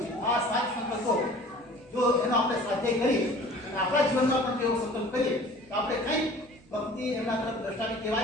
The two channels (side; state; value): right; noise; hum, 30 dB below the sound